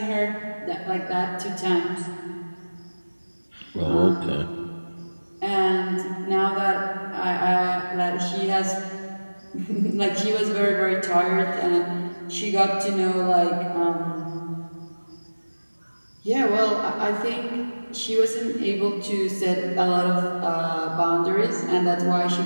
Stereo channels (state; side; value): inverted; both; correlation -1.00